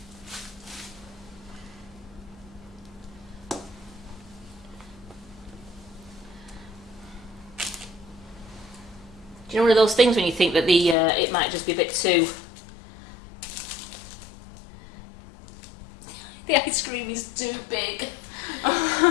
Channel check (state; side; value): drops out; right; at 11.0 s